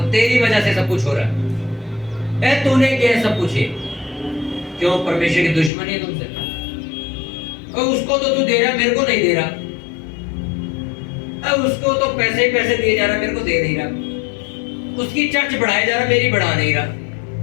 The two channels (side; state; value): right; drops out; at 5.7 s